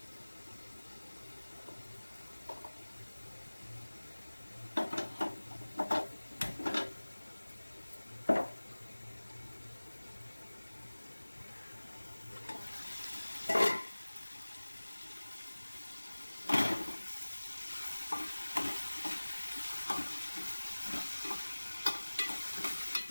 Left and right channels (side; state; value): both; inverted; correlation -1.00